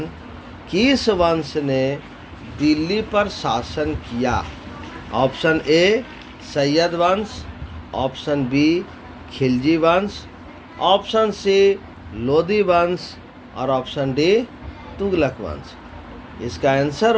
किस वंश ने दिल्ली पर शासन किया? ऑप्शन ए सैयद वंश, ऑप्शन बी खिलजी वंश, ऑप्शन सी लोदी वंश और ऑप्शन डी तुगलक वंश। इसका आंसर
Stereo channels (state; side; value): identical; both; correlation 1.00